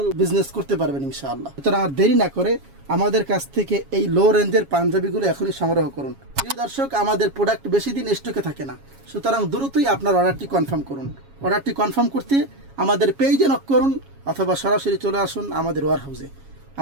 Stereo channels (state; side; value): late; left; 7.3 ms